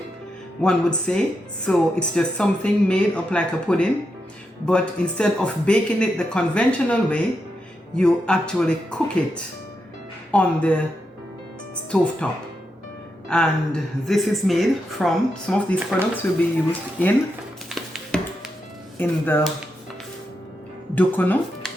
one would say. So it's just something made up like a pudding, but instead of baking it the conventional way, you actually cook it on the stove top. And this is made from, some of these products will be used in the dukuno,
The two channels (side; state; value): both; normal; correlation 0.85